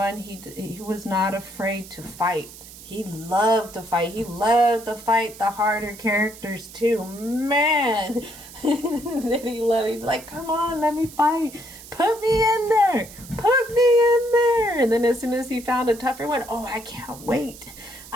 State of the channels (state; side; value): noise; right; hiss, 17 dB below the sound